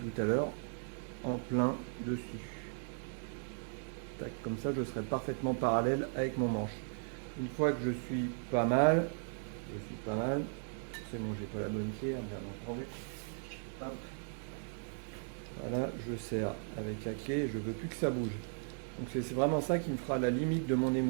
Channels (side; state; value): left; silent; 53 dB below the other